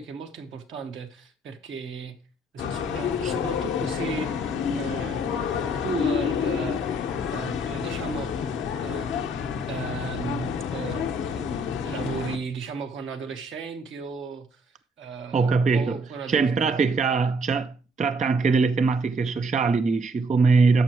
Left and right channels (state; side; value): normal; both; correlation 0.66